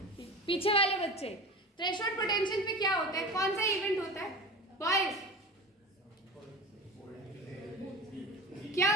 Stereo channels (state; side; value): normal; both; correlation 0.33